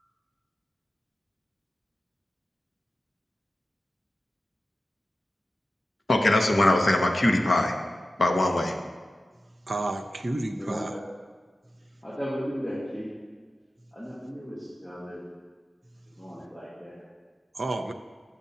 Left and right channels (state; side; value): normal; both; correlation 0.94